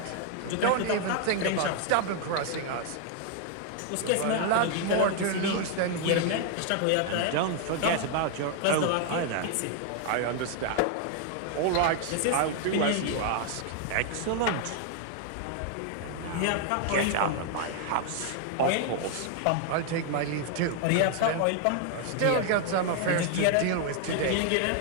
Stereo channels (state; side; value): different; both; correlation 0.00